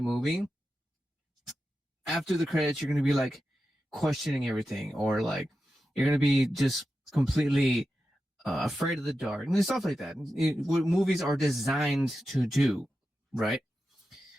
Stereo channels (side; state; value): both; normal; correlation 0.91